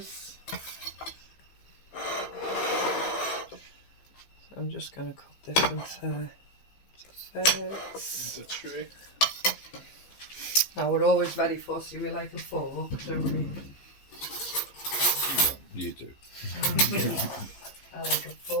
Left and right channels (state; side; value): late; right; 15 ms